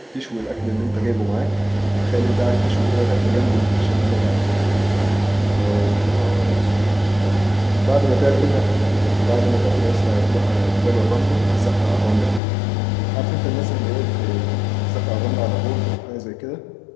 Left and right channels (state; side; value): drops out; right; at 12.4 s